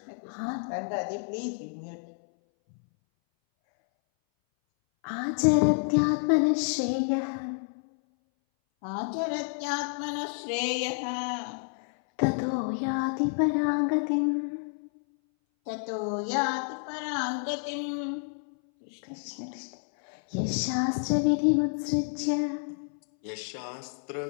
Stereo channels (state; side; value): silent; right; 58 dB below the other